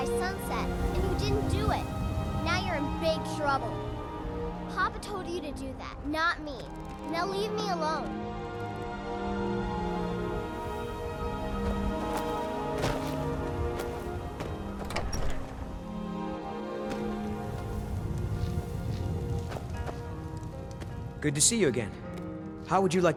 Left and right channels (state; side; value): identical; both; correlation 1.00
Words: sunset, and you didn't do it. Now you're in big trouble. Papa told you to do that, not me. Now leave me alone. Good to see you again. How would you like